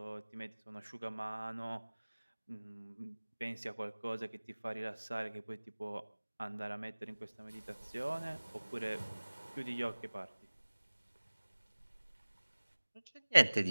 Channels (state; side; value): inverted; both; correlation -1.00